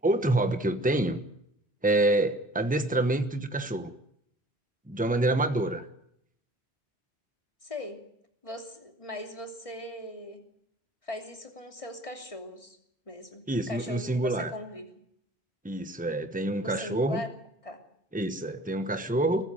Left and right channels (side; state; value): both; normal; correlation 0.50